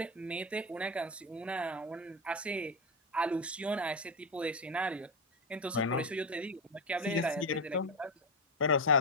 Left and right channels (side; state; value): both; normal; correlation 0.13